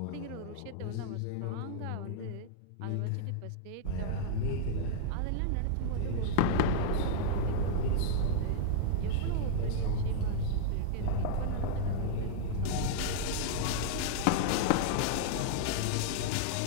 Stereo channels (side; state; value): both; different; correlation -0.01